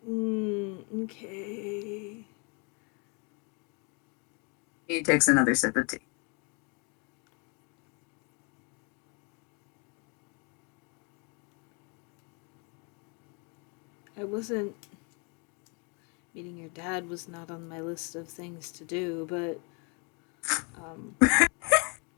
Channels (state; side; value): quieter; right; 34.1 dB